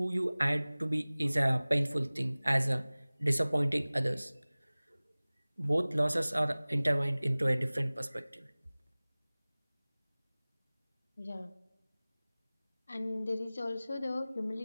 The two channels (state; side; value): inverted; both; correlation -0.99